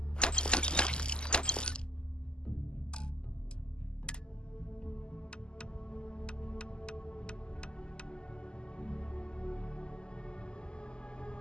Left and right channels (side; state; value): right; late; 0.047 ms